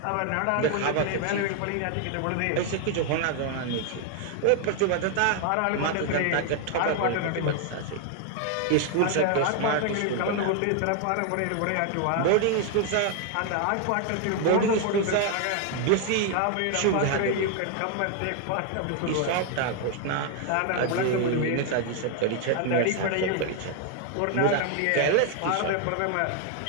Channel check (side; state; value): both; different; correlation 0.00